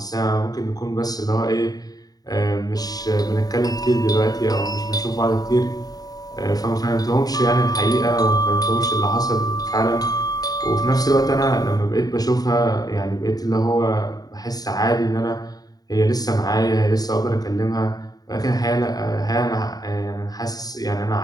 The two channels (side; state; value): right; late; 0.18 ms